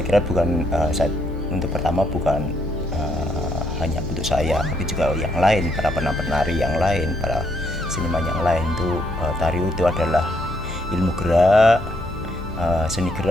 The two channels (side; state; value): both; normal; correlation 0.73